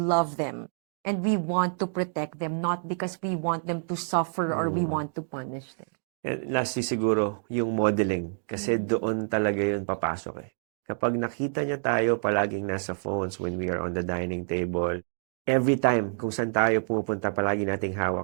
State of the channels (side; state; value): left; silent; digital silence